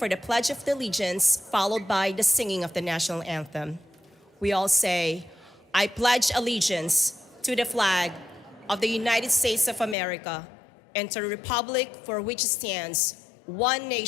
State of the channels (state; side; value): drops out; right; at 10.0 s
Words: the Pledge of Allegiance, followed by the singing of the national anthem. We all say, I pledge allegiance to the flag of the United States of America and to the republic for which it stands, one